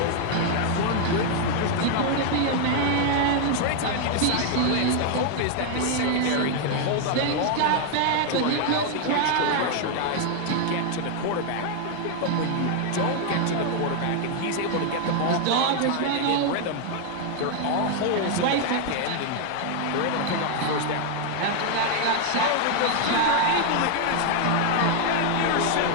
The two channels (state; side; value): different; both; correlation 0.00